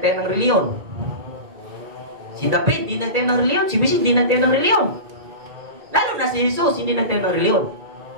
ng reliyon. Si David hindi nagtayo ng reliyon. Si Bishop hindi nagtayo ng reliyon. Lalo na si Jesus hindi nagtayo ng reliyon.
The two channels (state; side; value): late; left; 2.4 ms